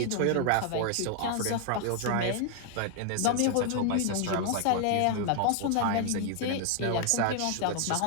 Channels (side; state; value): both; different; correlation 0.00